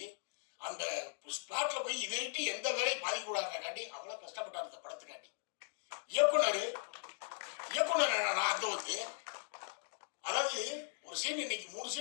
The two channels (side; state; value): right; silent; digital silence